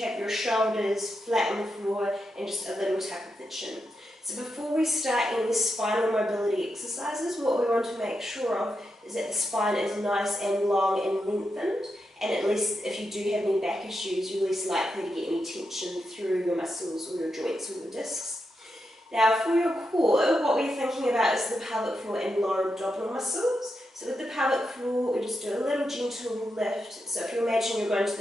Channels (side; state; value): both; normal; correlation 0.86